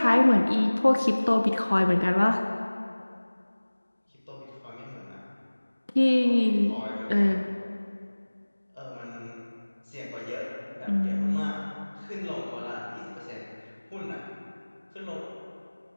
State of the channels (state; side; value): inverted; both; correlation -1.00